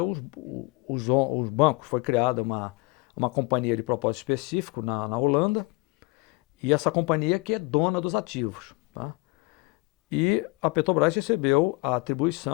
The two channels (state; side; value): quieter; right; 25.4 dB